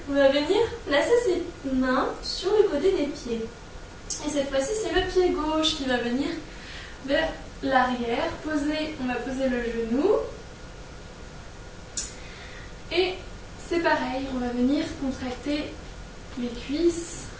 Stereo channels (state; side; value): identical; both; correlation 1.00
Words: On va venir placer ses mains sur le côté des pieds. Et cette fois-ci, c'est le pied gauche qui va venir vers l'arrière, on va poser le genou et c'est pareil, on va venir contracter les cuisses,